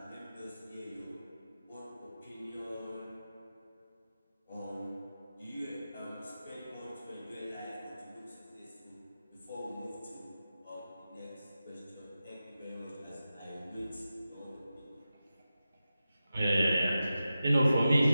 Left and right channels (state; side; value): inverted; both; correlation -0.93